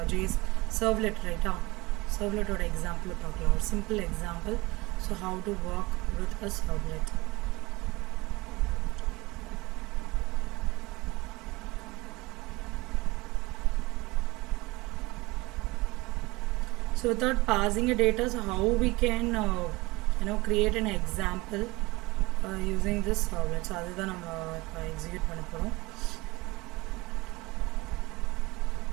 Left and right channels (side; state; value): left; quieter; 22.5 dB